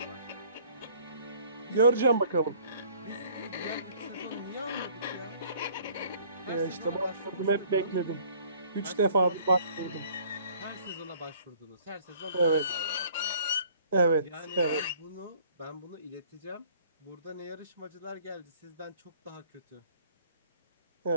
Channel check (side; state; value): both; inverted; correlation -0.56